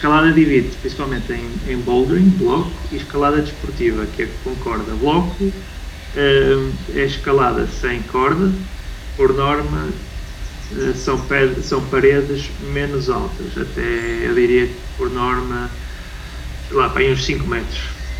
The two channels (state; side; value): identical; both; correlation 1.00